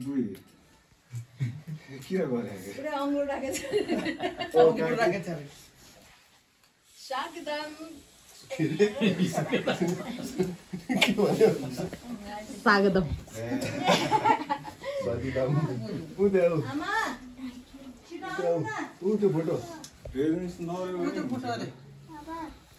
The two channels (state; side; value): identical; both; correlation 1.00